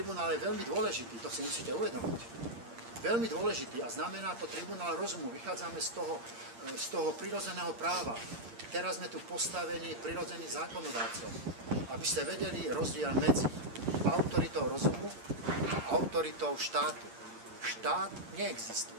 je veľmi dôležitý, to si musíte uvedomiť. Veľmi dôležitý a znamená to tribunál rozumu. Vychádzame z toho prirodzeného práva. Teraz sme tu postavení prirodzených zákonodárcov, aby ste vedeli rozdiel medzi autoritou rozumu a autoritou štátu. Štát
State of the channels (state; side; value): late; left; 8.6 ms